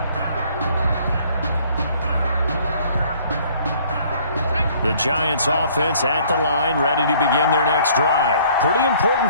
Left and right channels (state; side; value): inverted; both; correlation -0.58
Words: The Giants offense at the line, ready to begin their next drive. Pretty